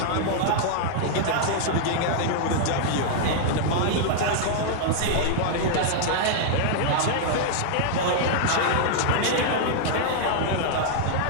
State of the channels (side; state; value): both; different; correlation -0.01